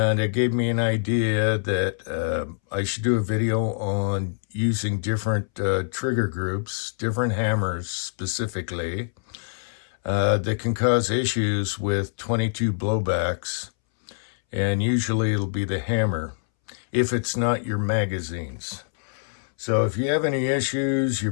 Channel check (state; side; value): silent; right; 62 dB below the other